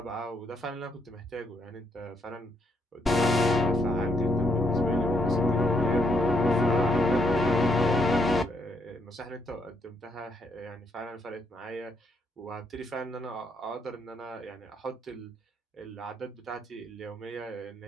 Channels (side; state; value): both; normal; correlation 0.74